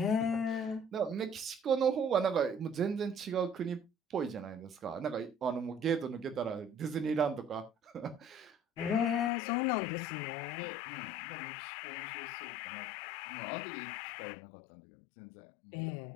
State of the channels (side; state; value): right; drops out; at 9.3 s